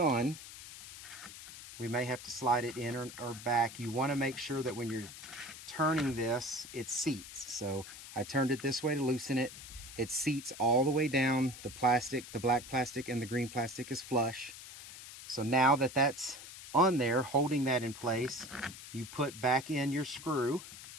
We may have to slide it in or back. You want to make sure that when you're turning this, it seats. So I turned it this way to loosen it. It seats all the way down. The plastic, the black plastic and the green plastic is flush. So now that that's on there, holding that in place, you put back in your screw.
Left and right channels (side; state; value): left; noise; hiss, 14 dB below the sound